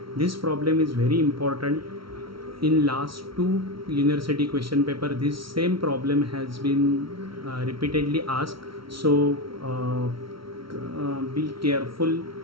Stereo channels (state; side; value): late; left; 0.74 ms